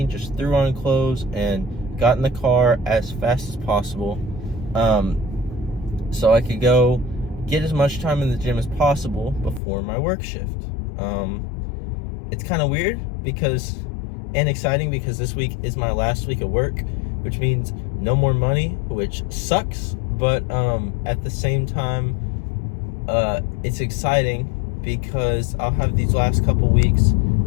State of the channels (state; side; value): drops out; right; at 9.6 s